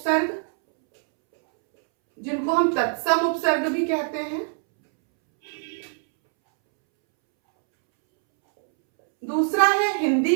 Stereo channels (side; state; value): left; silent; 64 dB below the other